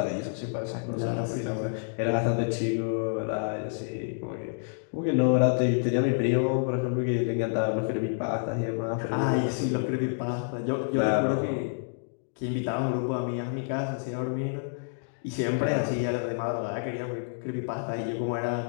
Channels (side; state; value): right; silent; digital silence